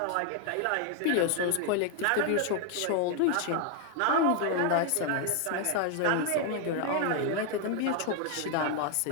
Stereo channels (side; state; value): both; different; correlation 0.01